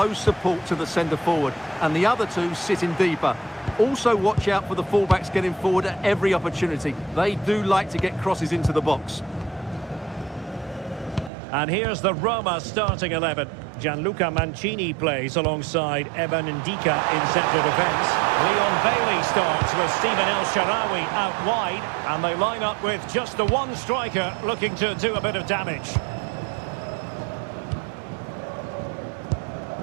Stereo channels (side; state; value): left; drops out; at 11.3 s